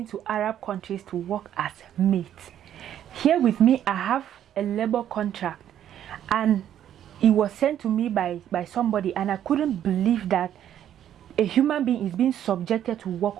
to Arab countries to work as mates? Here with me, I have a labor contract, and it was sent to me by somebody, and I couldn't believe that a human being is being subjected to work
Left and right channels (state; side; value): quieter; left; 10.6 dB